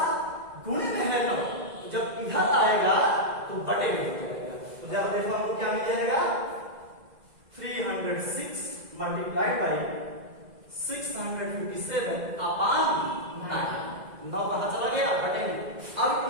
गुणे में है 9, जब इधर आएगा तो बटे में हो जाएगा। तो जरा देखो हमको क्या मिल जाएगा, 306 मल्टीप्लाइड बाई 657 अपान 9 कहां चला गया, बटे में। अब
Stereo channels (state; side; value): late; left; 2.0 ms